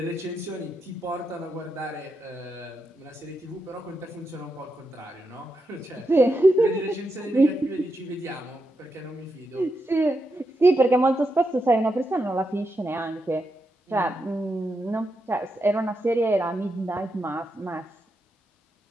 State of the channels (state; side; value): normal; both; correlation 0.85